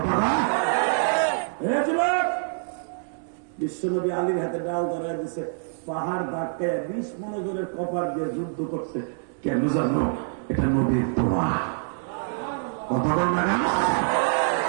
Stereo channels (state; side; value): silent; left; digital silence